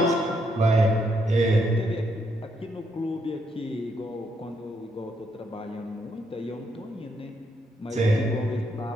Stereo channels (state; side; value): normal; both; correlation 0.76